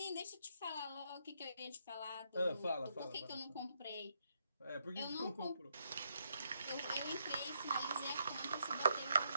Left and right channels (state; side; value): inverted; both; correlation -0.77